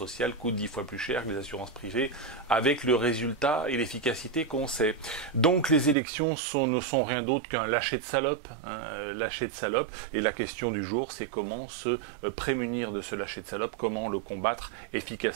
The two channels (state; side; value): drops out; left; at 6.0 s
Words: coûtent 10 fois plus cher que les assurances privées, avec le résultat et l'efficacité qu'on sait. Donc les élections ne sont rien d'autre qu'un lâcher de salope, lâcher de salope, et la question du jour, c'est comment se prémunir de ce lâcher de salope, comment le combattre